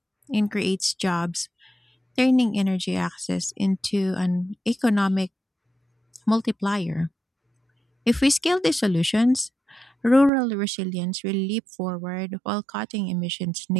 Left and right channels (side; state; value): left; drops out; at 10.3 s